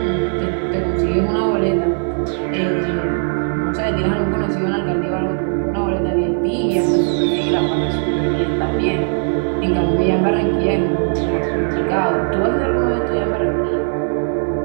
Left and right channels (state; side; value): silent; left; 65 dB below the other